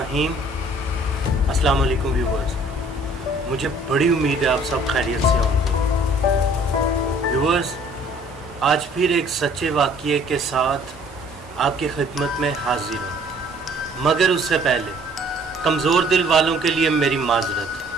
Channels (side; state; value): both; normal; correlation 0.56